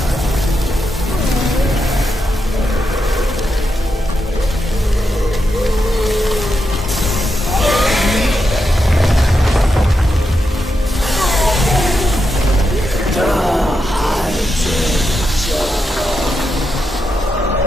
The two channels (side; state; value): both; normal; correlation 0.85